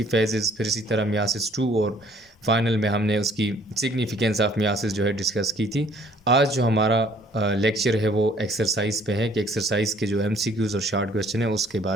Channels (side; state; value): both; normal; correlation 0.59